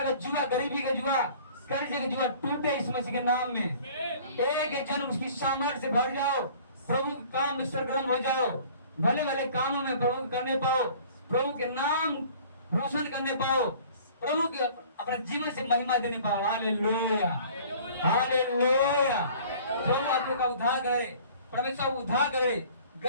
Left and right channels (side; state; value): both; inverted; correlation -0.49